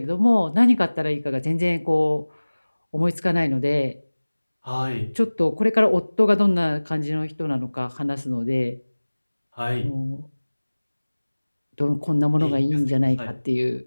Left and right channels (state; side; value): inverted; both; correlation -1.00